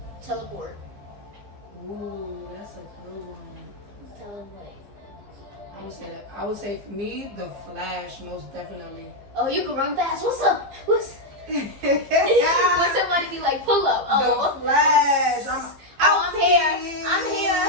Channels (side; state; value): left; late; 15 ms